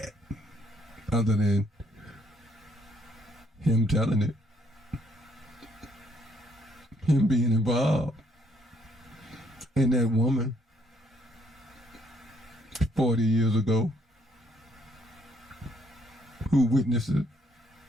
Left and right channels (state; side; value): normal; both; correlation 0.69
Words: other than him telling it. Him being involved. And that woman 40 years ago who witnessed it.